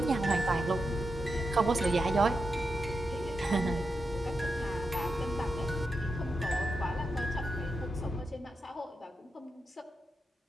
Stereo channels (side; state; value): both; normal; correlation 0.87